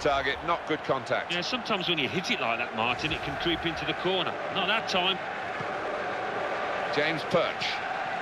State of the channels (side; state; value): both; identical; correlation 1.00